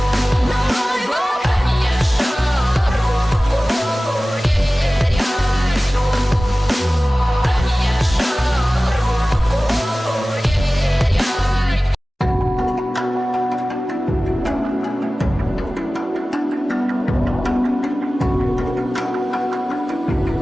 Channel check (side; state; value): both; normal; correlation 0.97